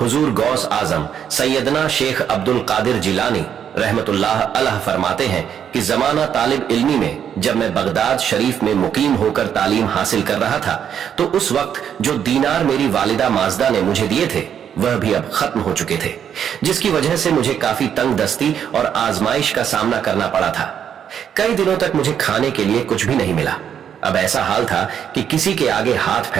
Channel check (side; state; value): left; quieter; 8.7 dB